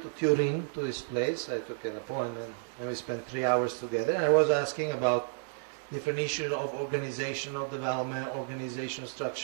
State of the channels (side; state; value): left; silent; 57 dB below the other